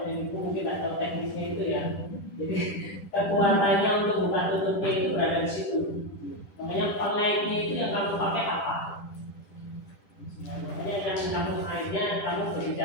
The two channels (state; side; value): late; right; 10 ms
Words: ini mungkin tak tahu teknisnya itu ya. Jadi kekuatannya untuk buka tutupnya itu berada di situ. Makanya pengaitnya itu yang kamu pakai apa? Makanya yang kamu akhirnya kamu